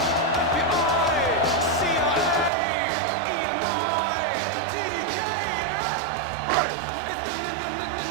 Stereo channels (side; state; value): left; drops out; at 2.5 s